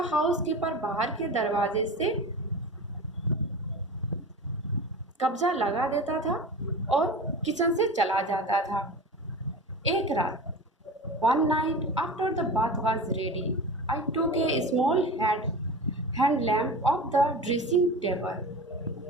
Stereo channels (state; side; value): normal; both; correlation 0.32